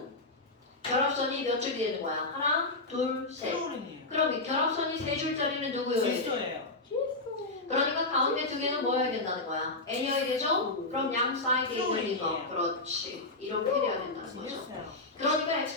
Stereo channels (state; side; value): quieter; right; 3.0 dB